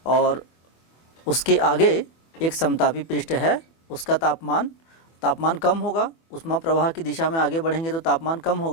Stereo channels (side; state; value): right; late; 24 ms